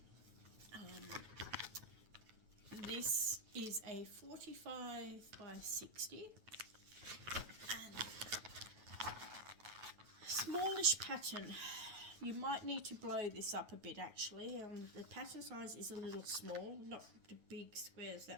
This is a 45 by 60 and smallish pattern. You might need to blow this up a bit actually. The pattern size is a little small, not the big squares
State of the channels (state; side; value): late; left; 9.3 ms